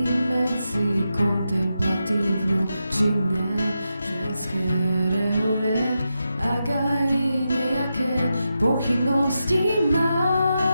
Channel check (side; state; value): both; inverted; correlation -0.88